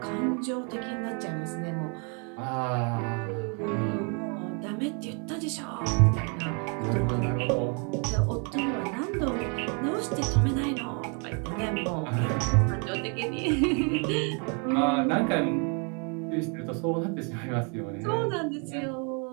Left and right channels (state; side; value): quieter; left; 37.2 dB